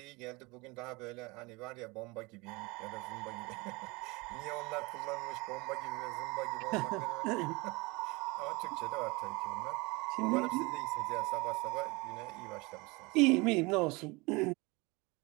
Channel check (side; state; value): left; quieter; 25.4 dB